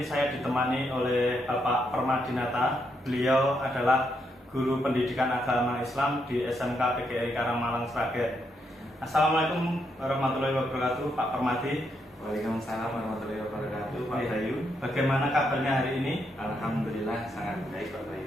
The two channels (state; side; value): normal; both; correlation 0.79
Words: saya ditemani oleh Bapak Permadinata. Beliau adalah guru pendidikan agama Islam di SMK PGRI Karamalang Sragen. Assalamualaikum warahmatullahi wabarakatuh, Pak Permadi. Waalaikumsalam warahmatullahi wabarakatuh, Pak Bayu. Bagaimana kabarnya hari ini? Alhamdulillah sangat baik, Pak